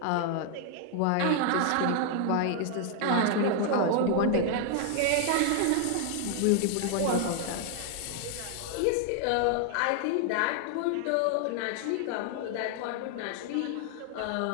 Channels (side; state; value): both; different; correlation 0.00